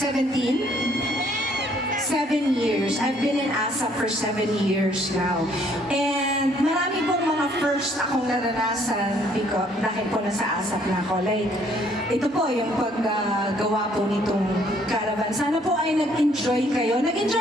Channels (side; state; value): both; normal; correlation 0.64